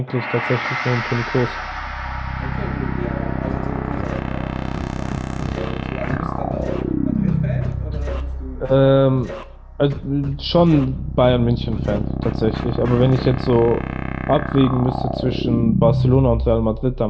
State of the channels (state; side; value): identical; both; correlation 1.00